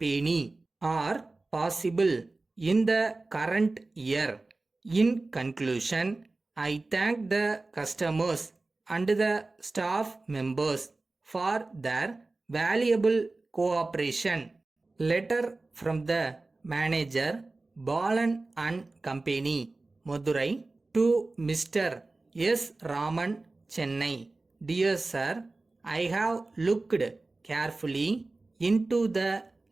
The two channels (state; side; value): quieter; left; 3.3 dB